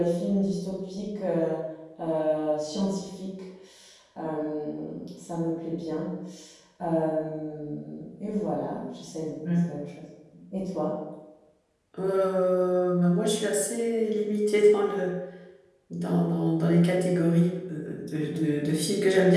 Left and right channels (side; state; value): both; identical; correlation 1.00